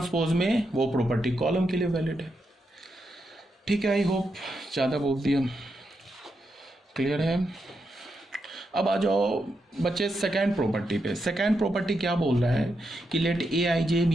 में वो प्रॉपर्टी कॉलम के लिए वैलिड है, ठीक है। आई होप ज़्यादा बोल दिया, क्लियर है। अब आ जाओ बच्चे सेकेंड प्रॉपर्टी पे। सेकेंड प्रॉपर्टी क्या बोल रहा है कि let A i j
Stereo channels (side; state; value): both; normal; correlation 0.84